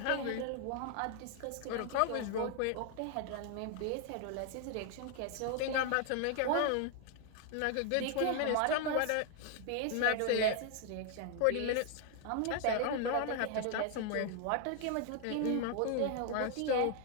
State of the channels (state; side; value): different; both; correlation 0.00